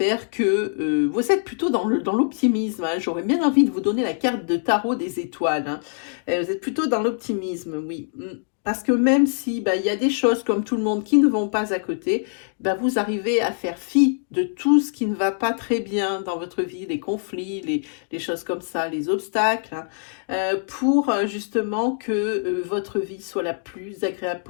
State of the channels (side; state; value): right; silent; digital silence